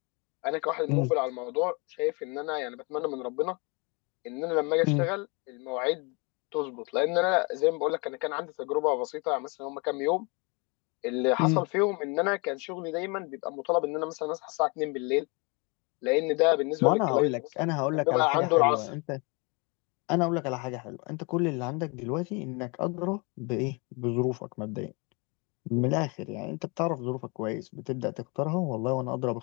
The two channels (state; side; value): quieter; right; 30.6 dB